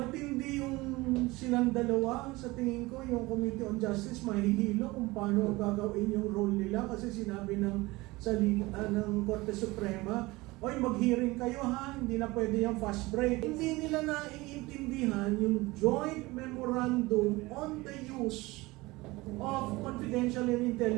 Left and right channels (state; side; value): quieter; left; 21.4 dB